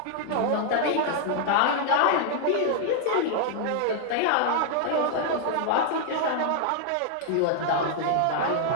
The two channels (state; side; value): different; both; correlation 0.00